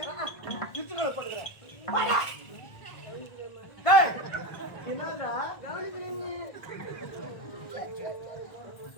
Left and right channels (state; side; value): late; right; 1.5 ms